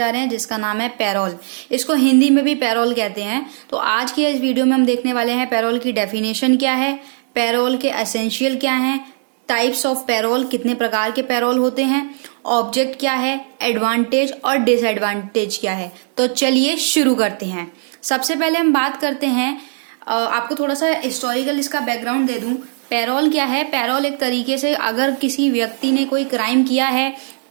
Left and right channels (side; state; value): left; silent; digital silence